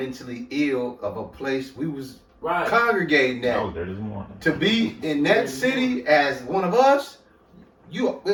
ill of a place we was congregating at. To be in that city as one of us, you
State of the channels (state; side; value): identical; both; correlation 1.00